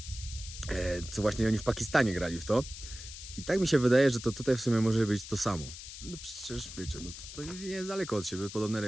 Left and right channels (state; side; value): noise; left; hiss, 12 dB below the sound